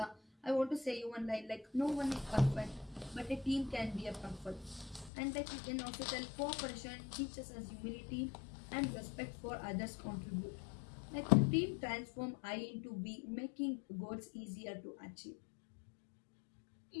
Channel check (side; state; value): right; drops out; at 5.1 s